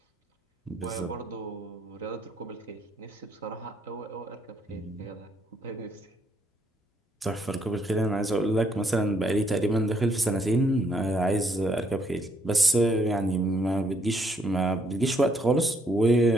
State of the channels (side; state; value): both; normal; correlation 0.71